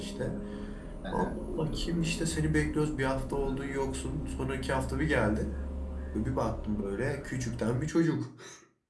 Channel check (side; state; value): both; identical; correlation 1.00